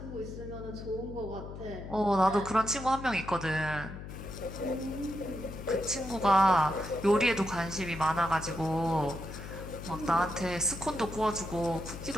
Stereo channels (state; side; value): noise; left; hum, 10 dB below the sound